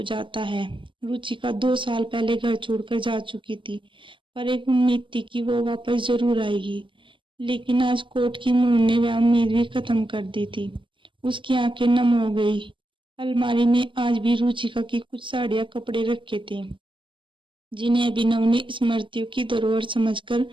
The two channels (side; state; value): left; late; 0.24 ms